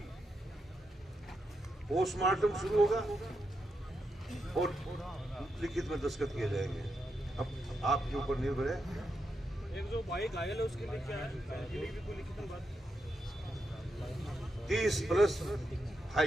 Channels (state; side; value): normal; both; correlation 0.84